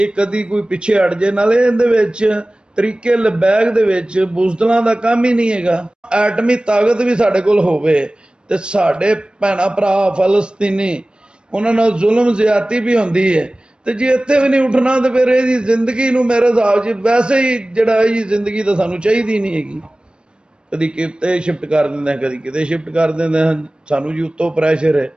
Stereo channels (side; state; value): left; late; 0.054 ms